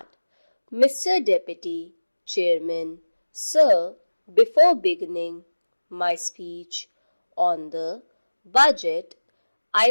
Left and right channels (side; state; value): both; inverted; correlation -1.00